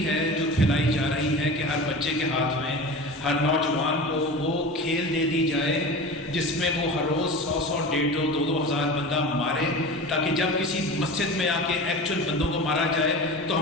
ہے جو پھیلائی جا رہی ہے کہ ہر بچے کے ہاتھ میں، ہر نوجوان کو وہ کھیل دے دی جائے جس میں وہ ہر روز 100 150 2 ہزار بندہ مارے، تاکہ جب کسی مسجد میں آ کے ایکچوئل بندوں کو مارا جائے تو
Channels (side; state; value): both; normal; correlation 0.32